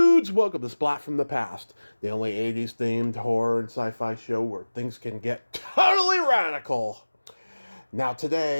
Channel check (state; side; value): inverted; both; correlation -1.00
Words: welcome to Splat from the Past, the only 80s themed horror and sci fi show where things can get totally radical. Now,